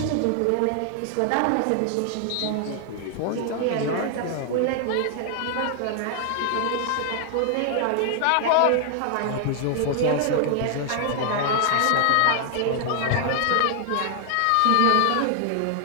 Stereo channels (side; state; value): both; different; correlation 0.00